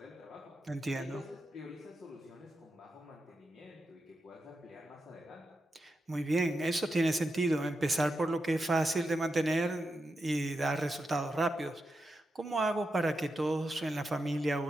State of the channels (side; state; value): both; normal; correlation 0.88